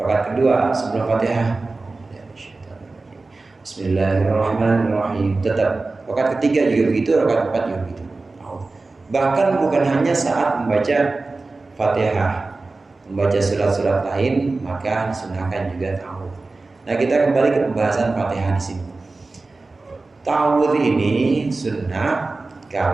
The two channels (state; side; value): quieter; left; 3.5 dB